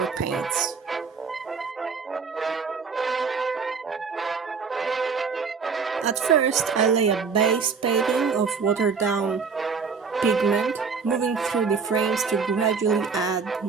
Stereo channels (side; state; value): left; quieter; 5.5 dB